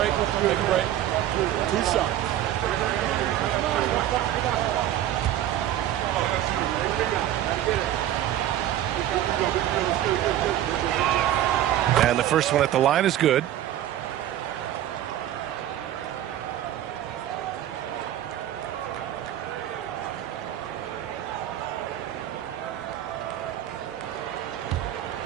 Take a break. 2 shots. And the first one at the line is good.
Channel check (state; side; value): quieter; left; 12.2 dB